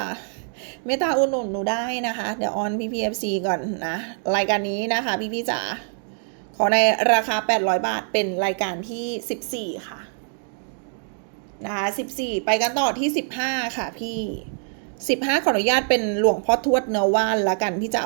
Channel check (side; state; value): left; silent; 63 dB below the other